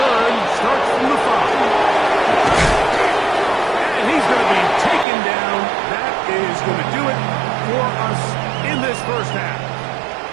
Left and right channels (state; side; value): drops out; left; at 5.1 s